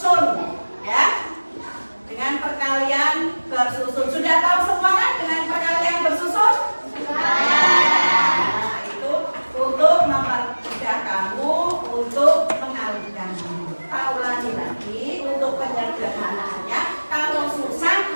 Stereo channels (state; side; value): inverted; both; correlation -1.00